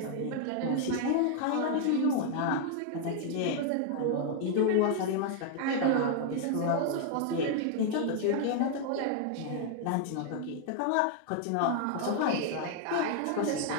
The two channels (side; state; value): both; different; correlation 0.00